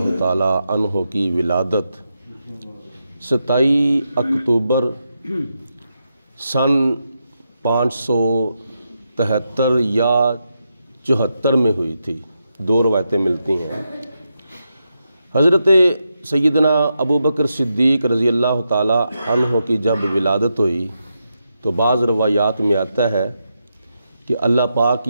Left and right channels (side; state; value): both; inverted; correlation -0.85